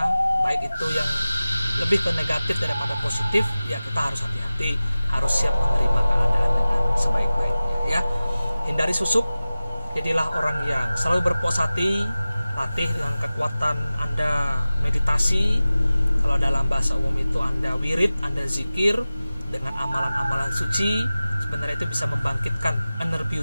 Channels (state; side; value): inverted; both; correlation -0.96